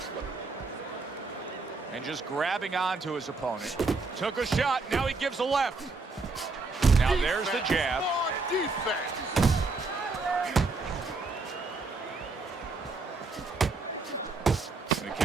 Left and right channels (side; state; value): left; quieter; 3.7 dB